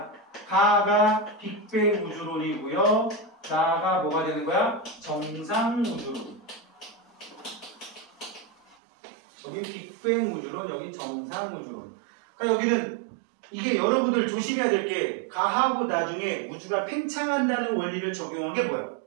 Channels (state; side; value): drops out; left; at 8.8 s